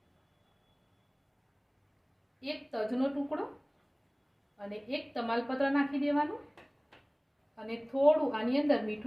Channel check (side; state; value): both; identical; correlation 1.00